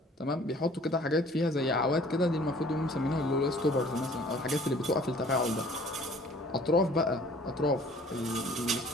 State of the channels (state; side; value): normal; both; correlation 0.53